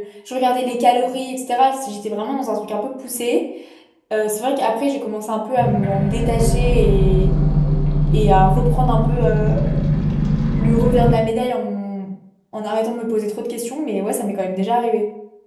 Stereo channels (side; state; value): both; identical; correlation 1.00